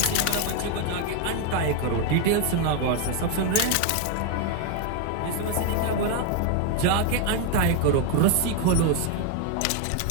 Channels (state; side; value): different; both; correlation 0.01